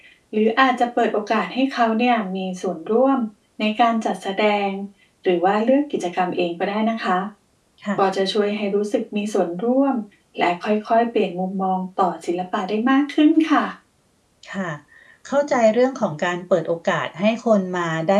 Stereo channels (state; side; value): identical; both; correlation 1.00